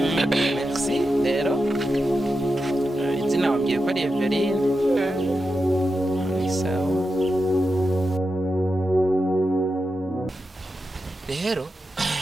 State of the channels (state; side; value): normal; both; correlation 0.89